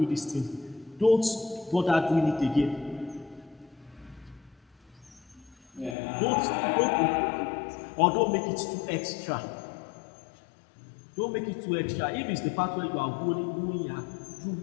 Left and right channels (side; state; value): right; drops out; at 6.0 s